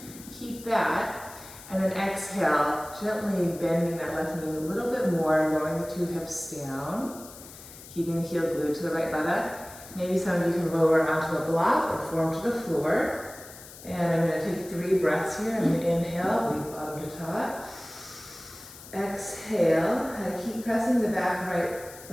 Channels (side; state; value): left; noise; hiss, 17 dB below the sound